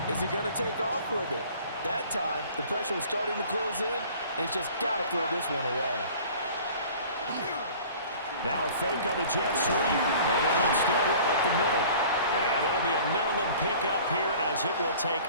he going to take off with it? That time, the pressure was starting to close in, and he's just got to throw this one away. Now a fake on the jet sweep, and they'll instead run up the middle. And it'll be a minimum pickup here as it will take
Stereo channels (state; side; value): inverted; both; correlation -0.47